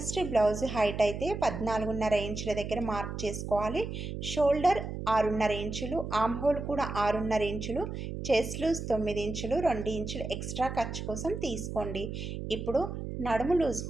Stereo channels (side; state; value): right; noise; hum, 6 dB below the sound